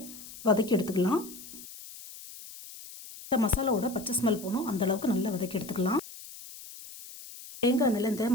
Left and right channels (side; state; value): left; noise; hiss, 15 dB below the sound